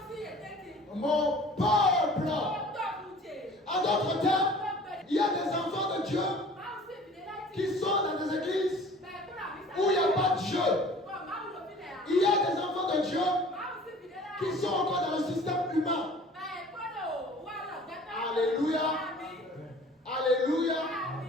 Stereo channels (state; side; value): normal; both; correlation 0.47